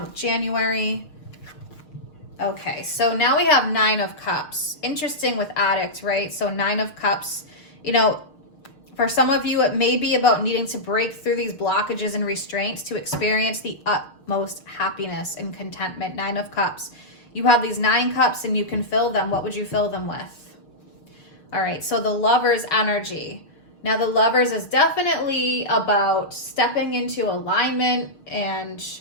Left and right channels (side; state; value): right; late; 6.6 ms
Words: with January. Okay, so now we have 9 of Cups. Interesting with Addict, right? So 9 of Cups, you know, for some of you, it may be about needing to break through these blockages and restraints to experience the utmost happiness and contentment. 9 of Cups. You have these 9 cups and you can fill them. What would you fill them with? All right, so the Lover's energy. Now, the Lovers is definitely about stepping into alignment and